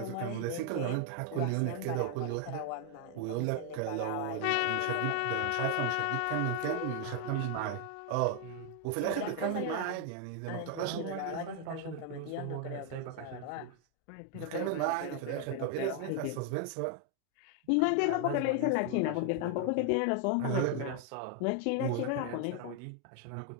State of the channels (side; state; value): both; different; correlation 0.00